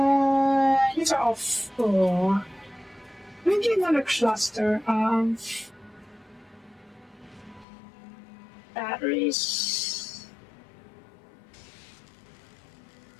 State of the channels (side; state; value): right; drops out; at 7.7 s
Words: These are all full. Maybe another cluster of batteries.